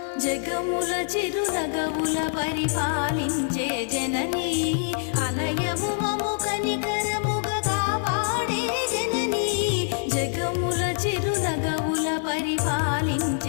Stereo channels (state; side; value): silent; right; 62 dB below the other